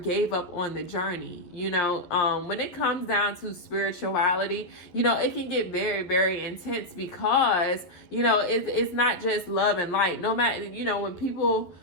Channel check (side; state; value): right; late; 11 ms